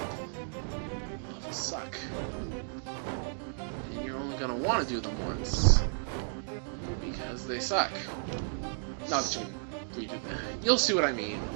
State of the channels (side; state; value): left; silent; digital silence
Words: suck. And you're only gonna want to do them once because they suck. Not that you can redo them. You'll see what I mean.